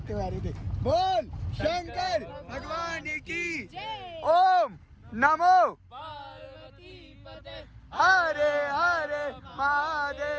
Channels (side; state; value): both; identical; correlation 1.00